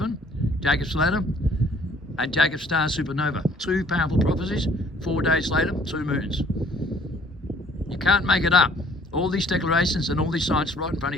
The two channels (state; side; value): normal; both; correlation 0.58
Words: Jacob's ladder, and Jacob's star supernova. 2 powerful prophecies, 4 days later, 2 moons. You can't make it up. All these declarations and all these signs right in front